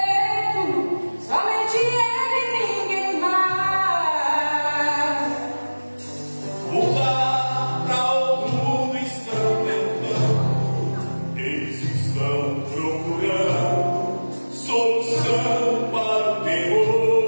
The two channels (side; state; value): both; inverted; correlation -1.00